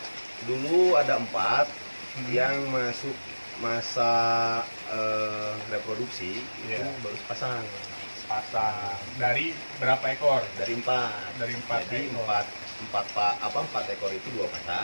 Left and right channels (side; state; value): both; inverted; correlation -1.00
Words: Dulu ada 4 yang masuk masa reproduksi, itu Iya. baru sepasang. Pasang. Dari berapa ekor? Dari 4. Dari 4 Jadi ekor. 4 ekor itu 2